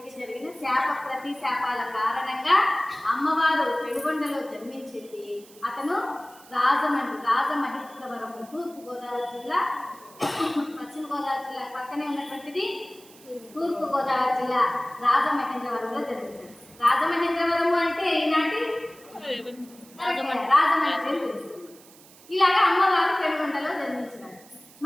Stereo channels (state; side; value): noise; right; hiss, 23 dB below the sound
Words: జరిగిన శాప ప్రతిశాపాల కారణంగా అమ్మవారు పెనుగొండలో జన్మించింది. అతను రాజమహేంద్రవరం తూర్పు గోదావరి జిల్లా, పశ్చిమ గోదావరి జిల్లా పక్కనే ఉన్నటువంటిది తూర్పు గోదావరి జిల్లా రాజమహేంద్రవరంలో జన్మించారు. రాజమహేంద్రవరము అంటే ఈనాటి రాజమండ్రి. ఇలాగా అమ్మవారు పెనుగొండలో జన్మించినారు.